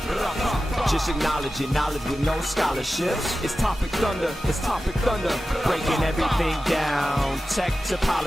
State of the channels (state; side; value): normal; both; correlation 0.94